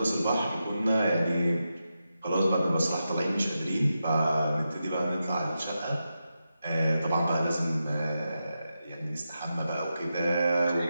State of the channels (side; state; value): both; inverted; correlation -0.88